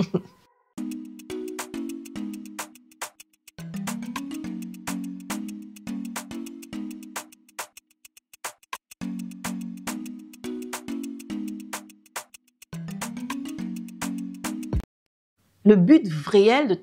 Le but réel de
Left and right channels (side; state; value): both; identical; correlation 1.00